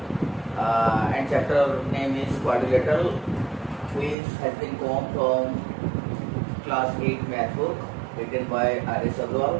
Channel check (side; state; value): left; drops out; at 4.2 s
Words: and chapter name is quadrilateral, which has been come from class 8 math book written by R.S.